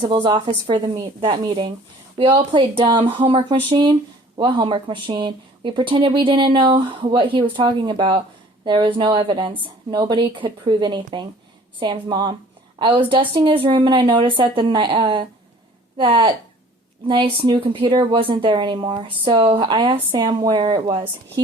office for that meeting. We all played dumb. Homework machine? What homework machine? We pretended we didn't know what he was talking about. There was no evidence. Nobody could prove anything. Sam's mom. I was dusting his room and I noticed that that nice new computer wasn't there anymore. So I asked Sam where it was.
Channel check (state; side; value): normal; both; correlation 0.51